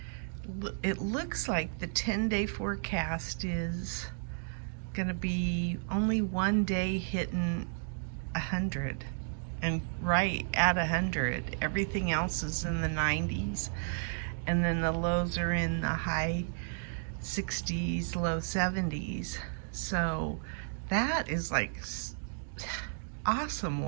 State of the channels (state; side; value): silent; left; digital silence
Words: it looks like the 10-day forecast is gonna be only one day hitting 100, and right at 100. Everything else is in the 90s, and then the lows are in the high 60s, low 70s. So that is like awesome